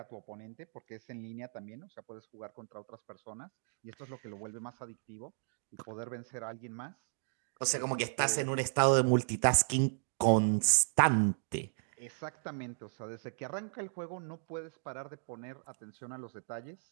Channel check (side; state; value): left; silent; digital silence